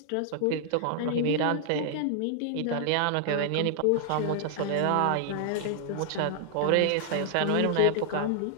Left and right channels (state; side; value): different; both; correlation -0.01